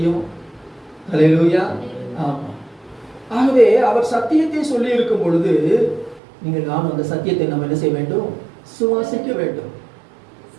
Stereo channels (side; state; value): left; drops out; at 6.2 s